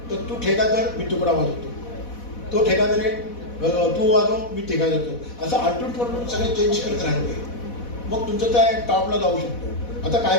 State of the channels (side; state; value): right; late; 4.1 ms